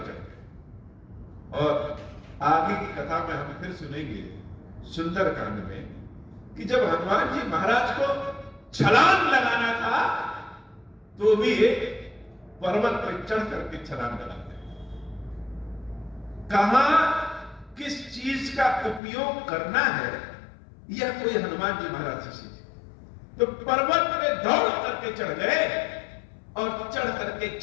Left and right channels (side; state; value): right; drops out; at 19.0 s